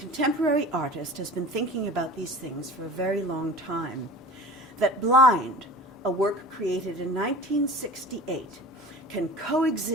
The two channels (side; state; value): both; normal; correlation 0.40